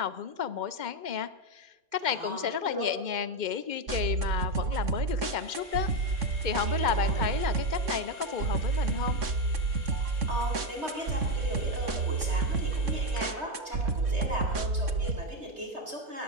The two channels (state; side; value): late; left; 3.6 ms